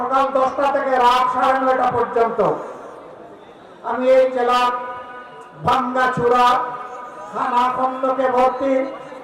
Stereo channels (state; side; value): identical; both; correlation 1.00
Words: 10টা থেকে রাত 9:30 পর্যন্ত আমি এই জেলার ভাঙ্গাচুরা খানা খন্দকে ভর্তি